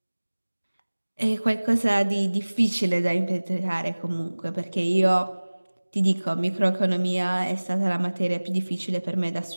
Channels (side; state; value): both; inverted; correlation -1.00